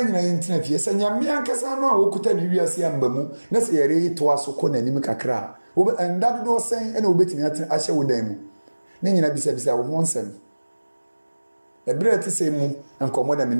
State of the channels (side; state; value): both; inverted; correlation -1.00